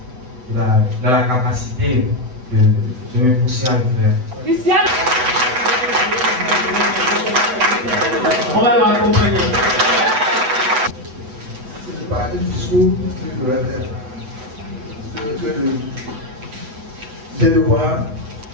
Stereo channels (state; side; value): late; left; 7.9 ms